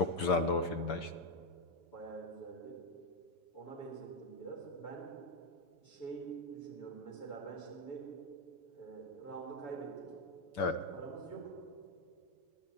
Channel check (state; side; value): late; right; 7.6 ms